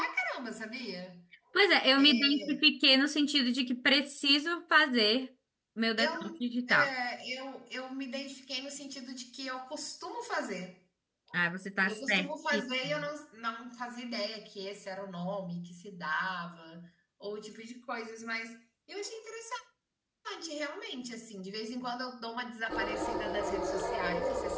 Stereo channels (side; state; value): both; identical; correlation 1.00